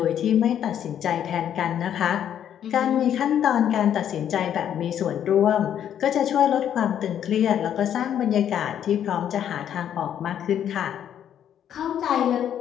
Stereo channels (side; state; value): right; quieter; 9.8 dB